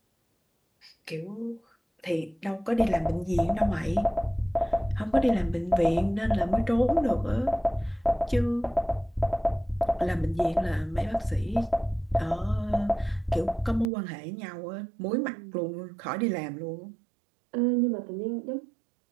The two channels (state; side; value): drops out; left; at 13.9 s